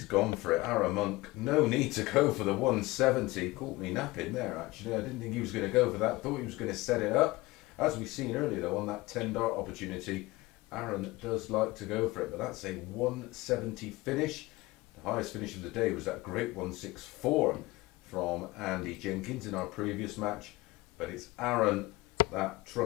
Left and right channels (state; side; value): quieter; right; 20.8 dB